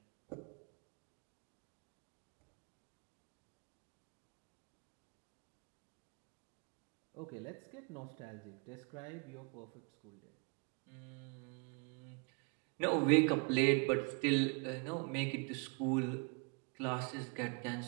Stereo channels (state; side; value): quieter; left; 33.9 dB